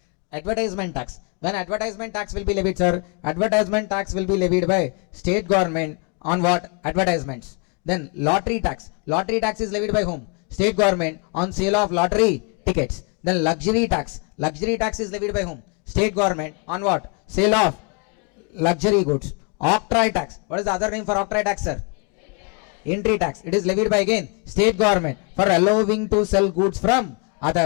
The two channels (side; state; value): right; quieter; 35.0 dB